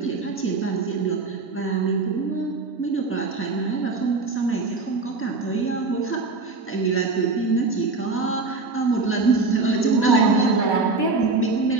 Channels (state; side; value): quieter; left; 3.8 dB